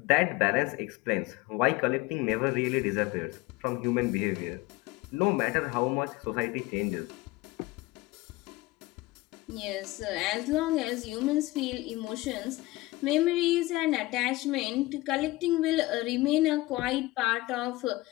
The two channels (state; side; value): quieter; right; 20.0 dB